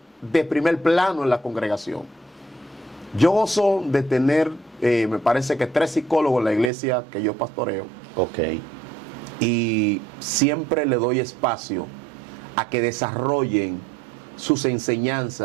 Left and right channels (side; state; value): left; drops out; at 6.7 s